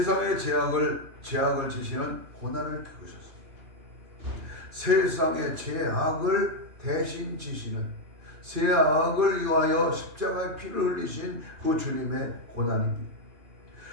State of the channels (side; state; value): left; late; 2.9 ms